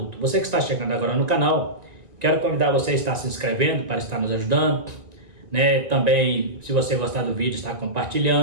Você que está chegando agora no canal, quero convidar você a estar se inscrevendo para estar nos ajudando, também, se você gostar do vídeo, estar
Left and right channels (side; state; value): left; late; 1.9 ms